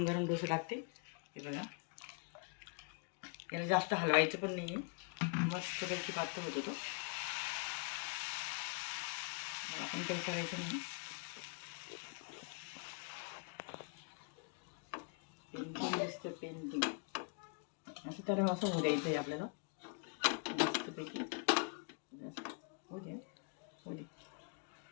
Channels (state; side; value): quieter; right; 36.9 dB